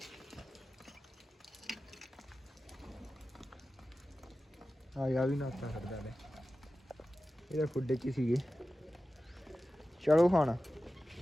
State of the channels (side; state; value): both; normal; correlation 0.94